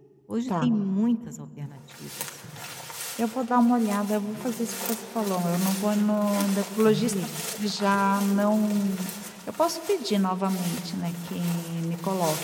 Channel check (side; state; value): both; identical; correlation 1.00